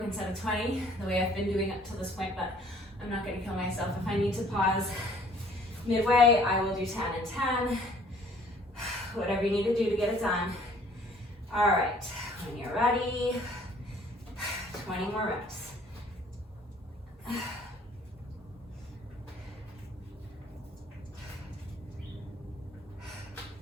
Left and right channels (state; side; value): normal; both; correlation 0.57